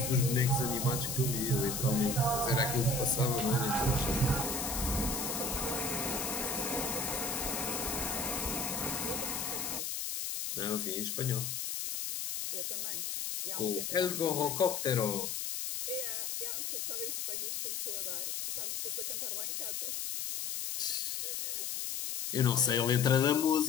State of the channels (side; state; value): left; noise; hiss, 3 dB below the sound